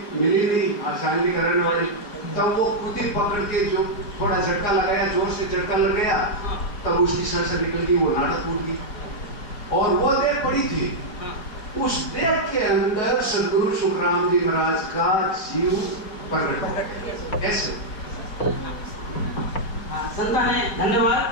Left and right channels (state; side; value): late; right; 4.8 ms